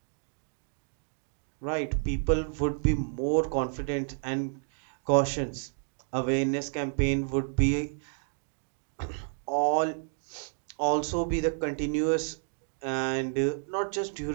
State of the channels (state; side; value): silent; left; digital silence